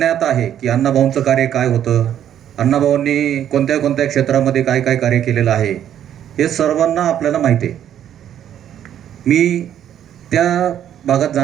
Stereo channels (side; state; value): left; quieter; 10.3 dB